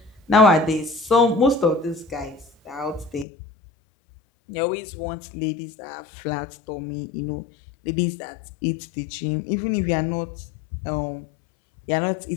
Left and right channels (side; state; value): right; drops out; at 3.2 s